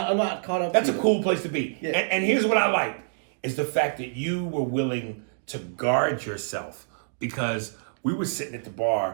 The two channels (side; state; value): left; silent; digital silence